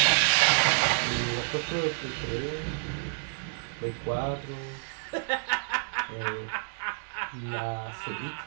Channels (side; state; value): left; silent; digital silence